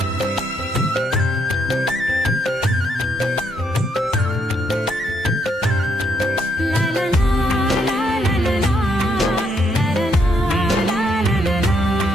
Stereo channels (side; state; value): both; normal; correlation 0.75